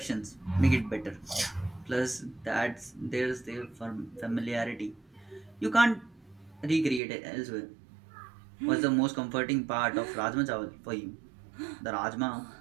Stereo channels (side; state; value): left; drops out; at 7.0 s